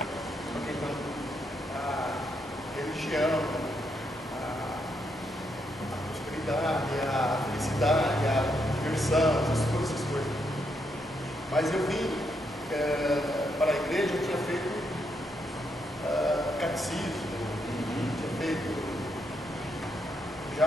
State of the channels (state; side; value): normal; both; correlation 0.78